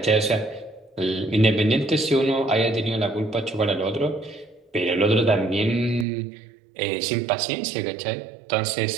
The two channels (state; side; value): drops out; left; at 6.1 s